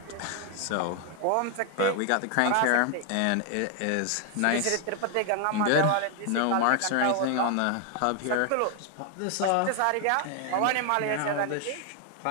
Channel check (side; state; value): both; different; correlation 0.00